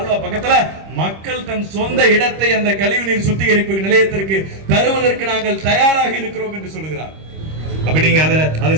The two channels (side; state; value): left; late; 26 ms